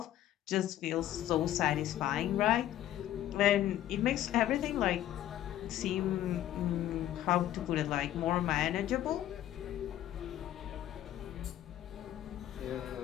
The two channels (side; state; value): right; quieter; 12.5 dB